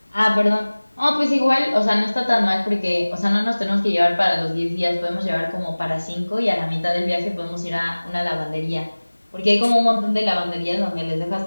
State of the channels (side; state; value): both; inverted; correlation -1.00